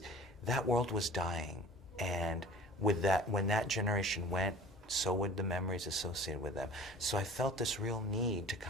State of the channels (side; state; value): both; normal; correlation 0.43